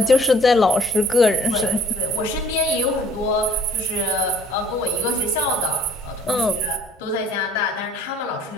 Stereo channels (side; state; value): both; normal; correlation 0.55